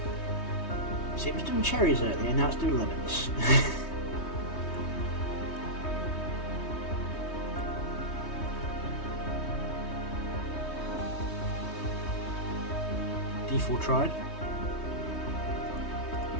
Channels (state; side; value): late; right; 3.2 ms